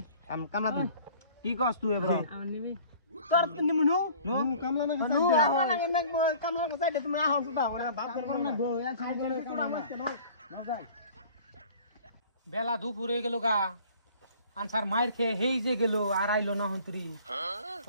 কামলা দিন কি কস তুই এবার আমার নিবি তোর নিমু নো কামলা না কামলা কো সাইডে তুমি আহো সুদা ওরা বাপ কর না গো এ সাইডে মজা বেলা দুপুর হয়ে গেল গা আনসার মায়ের খেয়ে হেই যে গেল আর আইলো না হন্তরি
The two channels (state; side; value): inverted; both; correlation -0.49